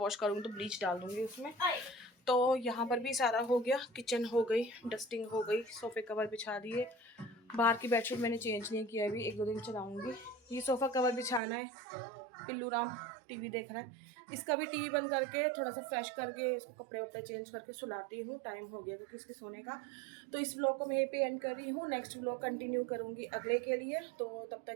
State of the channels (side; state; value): left; drops out; at 11.4 s